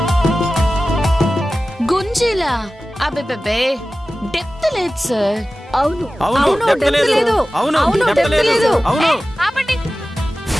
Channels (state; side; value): normal; both; correlation 0.96